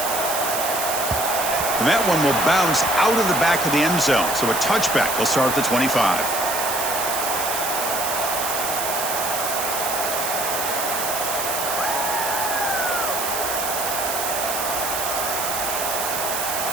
And that one will bounce out of the back of the end zone. So a touchback will start at the 25.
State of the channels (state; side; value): noise; right; hiss, 3 dB below the sound